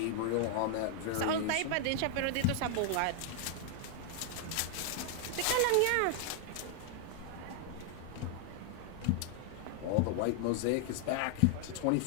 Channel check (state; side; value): different; both; correlation 0.00